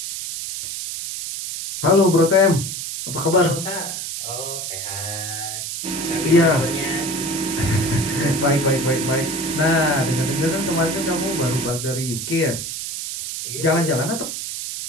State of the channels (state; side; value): noise; right; hiss, 5 dB below the sound